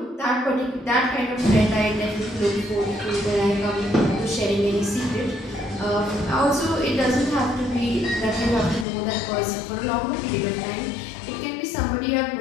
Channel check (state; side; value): drops out; right; at 8.8 s